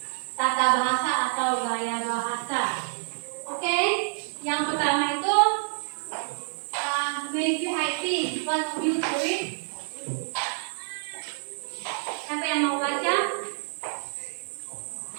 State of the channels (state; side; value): silent; left; digital silence